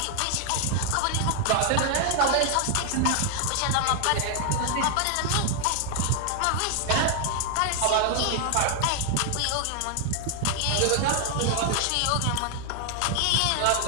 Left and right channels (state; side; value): different; both; correlation 0.00